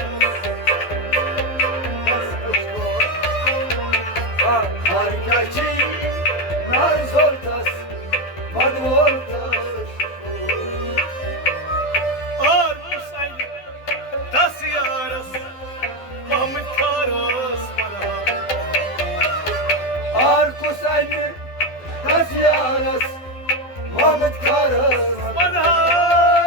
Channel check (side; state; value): right; late; 12 ms